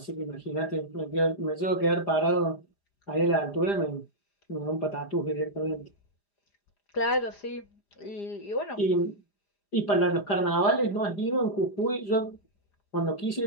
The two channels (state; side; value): late; right; 5.0 ms